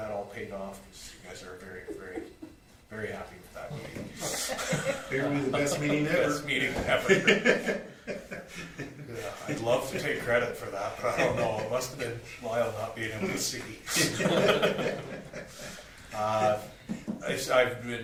all paid off, because you guys are very, very, very happy with that meeting. Apparently the best meeting ever. Best meeting ever. Yeah, I'd love to take credit for that, but I don't know, it must have been Lyle not being able to see. I've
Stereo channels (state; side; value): identical; both; correlation 1.00